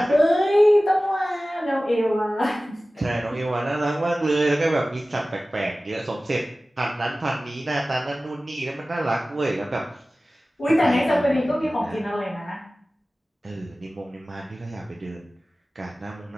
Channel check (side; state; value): both; normal; correlation 0.97